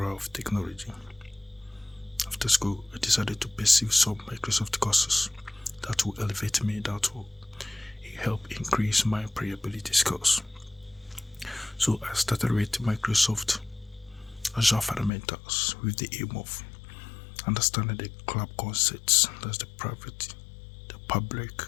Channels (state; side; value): drops out; right; at 15.1 s